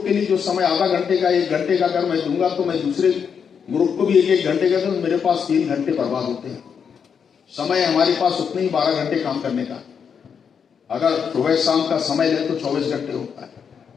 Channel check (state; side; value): quieter; right; 6.9 dB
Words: के लिए जो समय आधा घंटे का, 1 घंटे का अगर मैं दूंगा, तो मैं दूसरे ग्रुप को भी 1-1 घंटे का, तो मेरे पास 3 घंटे बर्बाद होते हैं। समय हमारे पास उतने ही 12 घंटे काम करने का। अगर सुबह शाम का समय ले तो 24 घंटे होता है,